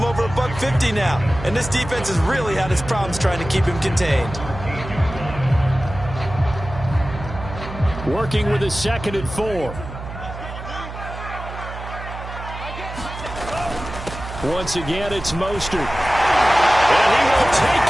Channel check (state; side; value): noise; right; hum, 10 dB below the sound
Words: over $150 now. And this defense has really had its problems trying to keep him contained. Working with his 2nd and 4. Once again, it's Mostert. And he will